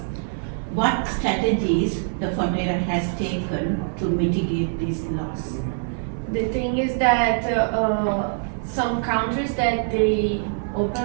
What strategies the Fonterra has taken to mitigate this loss? The thing is that some countries that they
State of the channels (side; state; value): left; silent; 63 dB below the other